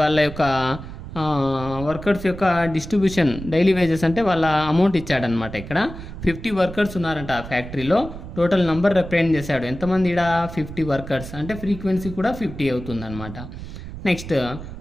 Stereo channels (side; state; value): right; noise; rumble, 11 dB below the sound